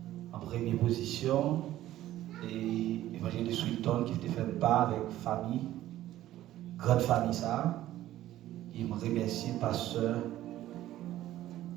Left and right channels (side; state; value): left; quieter; 14.0 dB